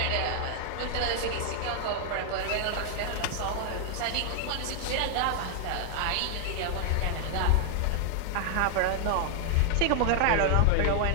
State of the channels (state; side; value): different; both; correlation 0.00